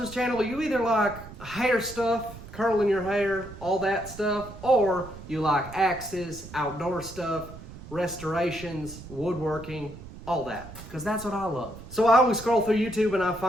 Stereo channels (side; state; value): right; noise; rumble, 15 dB below the sound